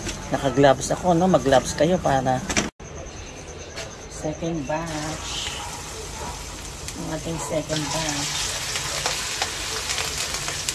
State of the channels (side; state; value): both; identical; correlation 1.00